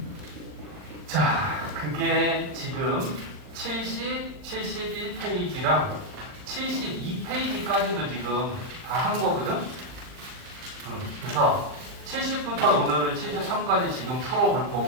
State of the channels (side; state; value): left; late; 39 ms